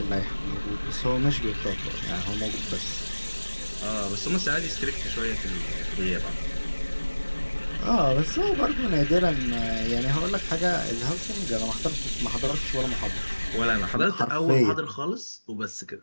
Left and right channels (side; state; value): both; inverted; correlation -1.00